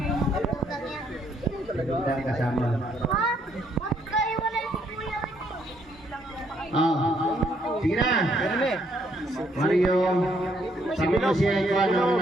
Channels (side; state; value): both; normal; correlation 0.70